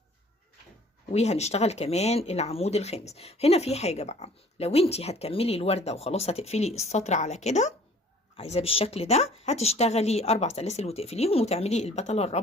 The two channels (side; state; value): both; normal; correlation 0.53